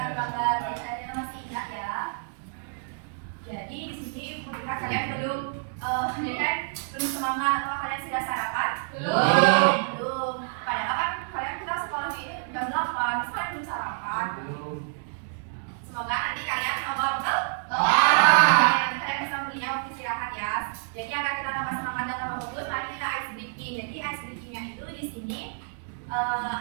Jadi di sini ketika kalian belum semangat atau kalian sudah sarapan? Belum. Padahal kan kalian kita sekolah ini jam 8, terus kalian belum sarapan. Semoga nanti kalian betul? Nanti kalian bisa belinya waktu istirahat ya. Jadi agar kita tambah semangat dan tambah bagus, mari kita ice breaking. Jadi ice breakingnya itu di sini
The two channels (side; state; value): left; silent; digital silence